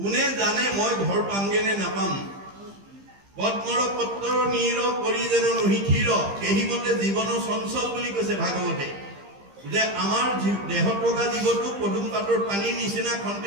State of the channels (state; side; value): late; left; 15 ms